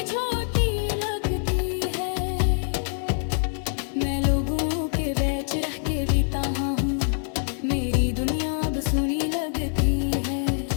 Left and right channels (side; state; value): right; silent; 62 dB below the other